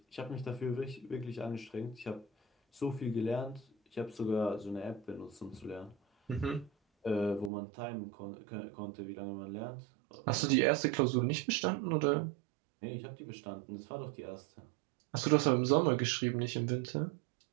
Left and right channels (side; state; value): left; drops out; at 7.5 s